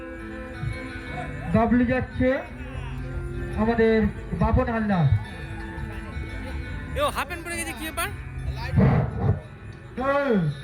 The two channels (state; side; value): identical; both; correlation 1.00